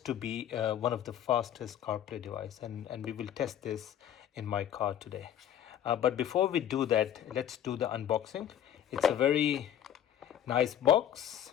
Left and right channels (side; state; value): right; quieter; 10.4 dB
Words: to be one of the fastest CarPlay device, and we will test this in my car today. But before we do that, let's do the unboxing. It's a very nice box,